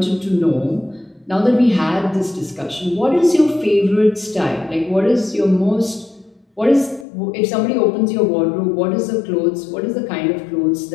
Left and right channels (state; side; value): drops out; right; at 7.1 s